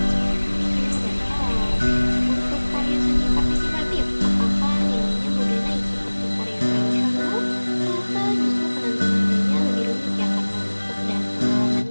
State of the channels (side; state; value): both; inverted; correlation -1.00